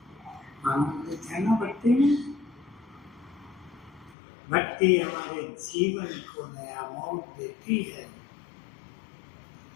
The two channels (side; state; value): right; drops out; at 4.2 s